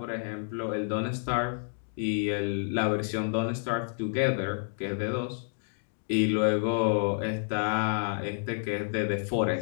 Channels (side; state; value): right; silent; digital silence